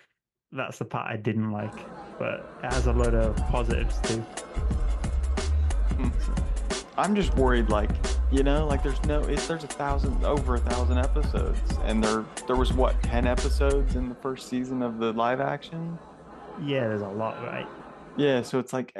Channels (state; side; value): identical; both; correlation 1.00